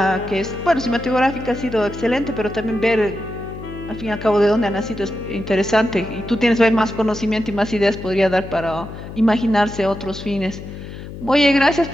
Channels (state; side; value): noise; left; hum, 11 dB below the sound